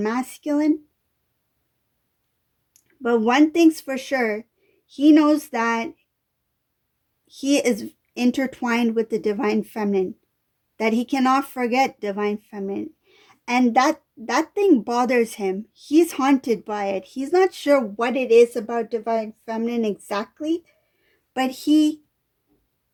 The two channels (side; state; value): both; identical; correlation 1.00